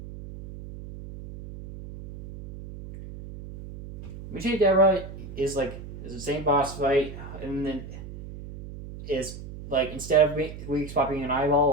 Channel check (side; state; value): right; noise; hum, 12 dB below the sound